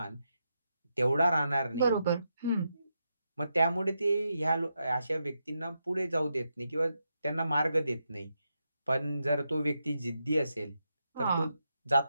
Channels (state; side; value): inverted; both; correlation -0.84